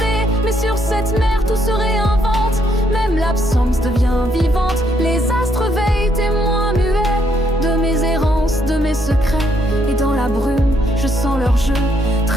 Mais sur cette mer tout se réinvente, même l'absence devient vivante. Les astres veillent, témoins muets de mes errances, de mes secrets. Et dans la brume, je sens leur jeu,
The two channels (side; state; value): both; normal; correlation 0.73